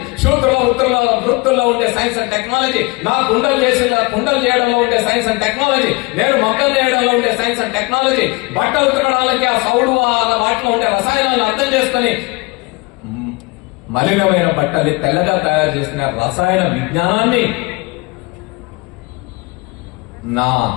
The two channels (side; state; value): right; quieter; 26.2 dB